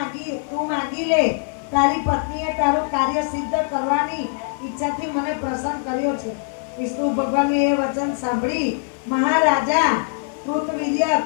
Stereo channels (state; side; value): silent; right; digital silence